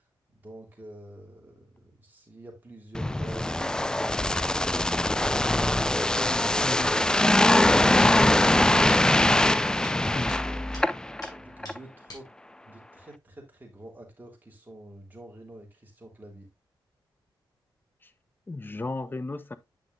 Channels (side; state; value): both; normal; correlation 0.88